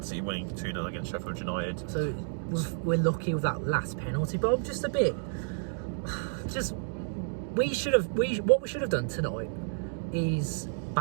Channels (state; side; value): silent; left; digital silence